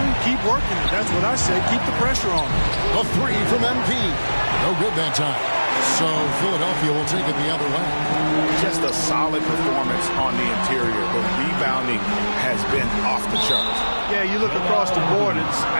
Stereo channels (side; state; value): both; inverted; correlation -1.00